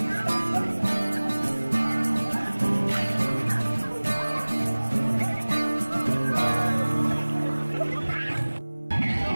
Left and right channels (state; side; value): inverted; both; correlation -1.00